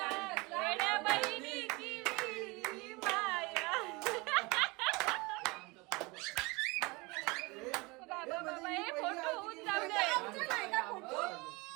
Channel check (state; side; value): quieter; left; 25.3 dB